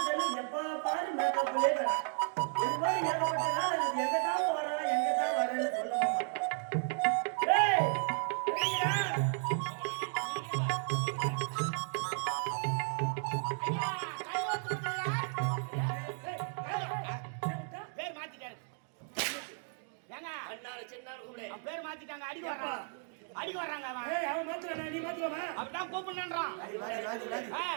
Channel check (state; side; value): silent; left; 55 dB below the other